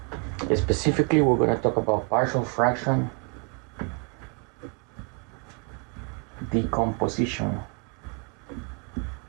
Specifically, we're going to talk about partial fraction decomposition.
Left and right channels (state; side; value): quieter; left; 37.0 dB